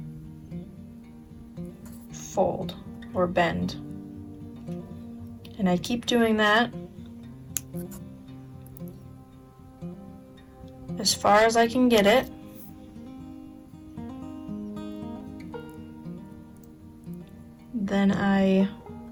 fold or bend, and I keep doing that as far as I can get it. Then I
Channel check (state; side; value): identical; both; correlation 1.00